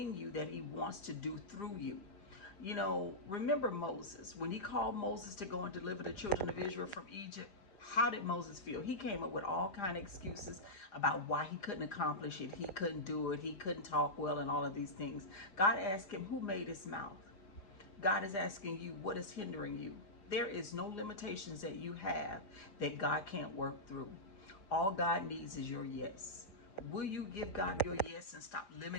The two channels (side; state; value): right; late; 4.9 ms